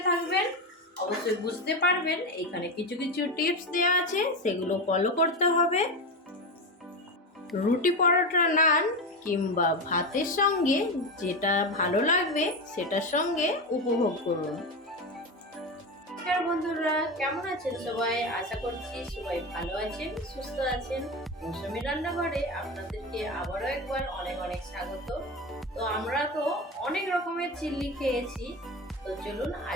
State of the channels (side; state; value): both; normal; correlation 0.19